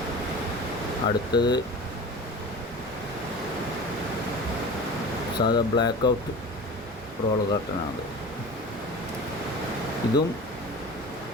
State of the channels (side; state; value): both; normal; correlation 0.35